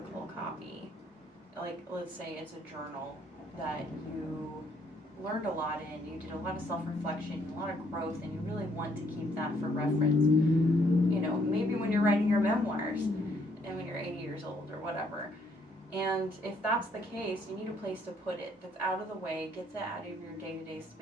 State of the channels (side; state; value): both; normal; correlation 0.68